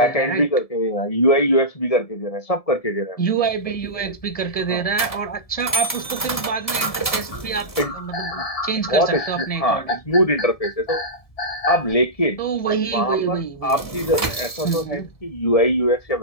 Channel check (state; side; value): late; right; 1.7 ms